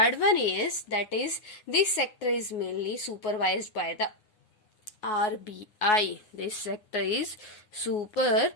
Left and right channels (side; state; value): right; late; 9.8 ms